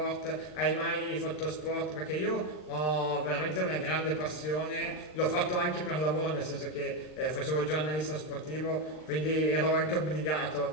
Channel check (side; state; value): right; late; 39 ms